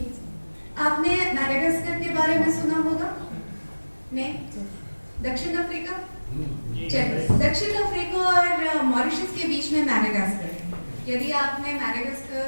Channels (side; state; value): both; inverted; correlation -1.00